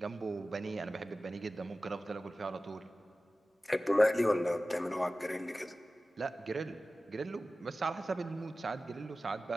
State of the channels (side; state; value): both; normal; correlation 0.96